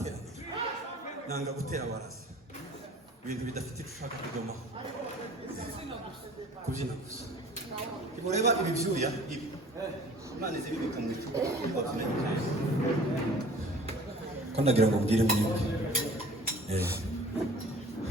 Nanga gutera warazi. Ibintu bidafite ushaka kudomaho. Kubyina gusa. Imureba ibi byuya ibi. Imana izibika mu icupa. Ko ndagira ngo mbwire mwebwe.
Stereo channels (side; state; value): both; normal; correlation 0.47